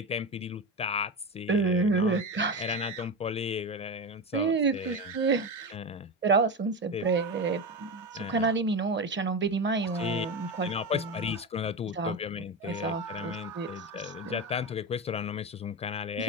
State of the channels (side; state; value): both; normal; correlation 0.19